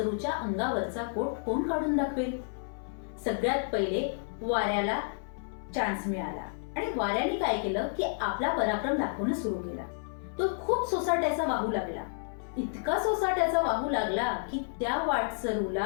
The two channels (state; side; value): silent; right; 57 dB below the other